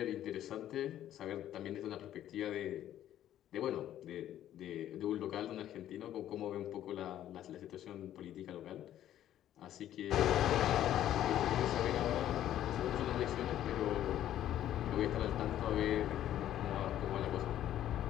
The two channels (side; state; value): right; quieter; 11.9 dB